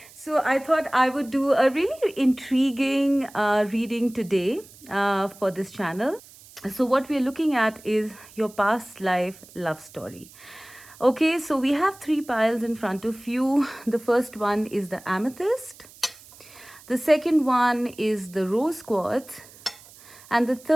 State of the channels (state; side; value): noise; right; hiss, 22 dB below the sound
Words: So I thought I would do a really intriguing reading today for this channel. So what we're looking at is your past life love story. Okay, so we have three piles in front of you. The first one is the amethyst. The second one is the rose quartz. And the